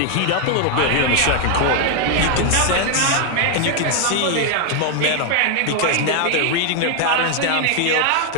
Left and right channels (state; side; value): different; both; correlation 0.01